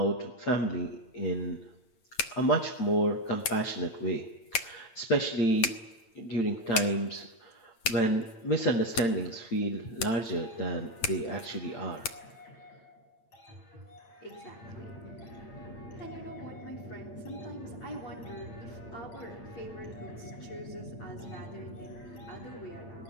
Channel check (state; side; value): late; right; 8.7 ms